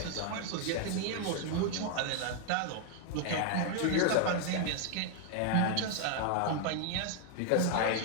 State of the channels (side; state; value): both; different; correlation 0.00